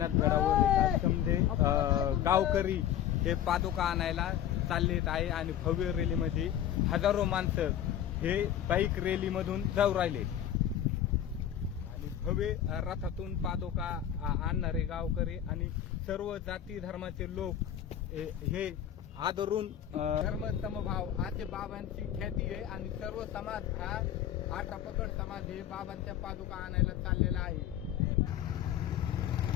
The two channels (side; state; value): right; quieter; 10.5 dB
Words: गडावर समजे गावकरी हे पादुका आणायला चाललेत आहे आणि भव्य रॅलीमध्ये हजारो माणसं हे बाईक रॅलीमधून जाऊ राहिले आणि भव्य रथातून पादुका आणणारे गावकरी आणि सर्व जाती धर्माचे लोक हे आदरून धर्म समभाव असे बाबांची ख्याती आहे आणि सर्व समाज हा 18 पकड समाज हे बाबांच्या पादुका आणायला चाललेला आहे।